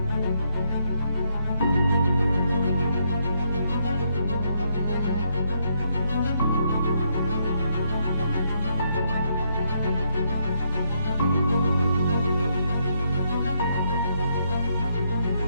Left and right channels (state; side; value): inverted; both; correlation -0.76